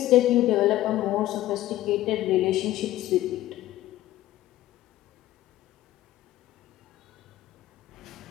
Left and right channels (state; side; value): quieter; right; 14.9 dB